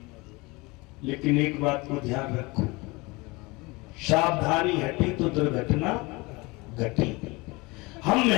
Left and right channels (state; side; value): quieter; right; 24.7 dB